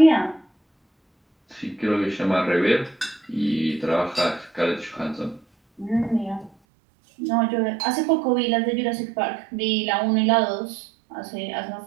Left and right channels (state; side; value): drops out; left; at 6.5 s